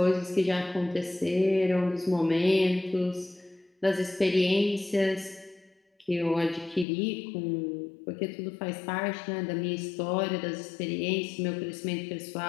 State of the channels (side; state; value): right; drops out; at 6.9 s